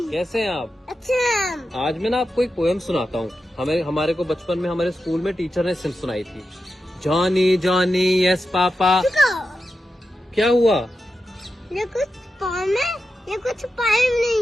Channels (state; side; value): normal; both; correlation 0.90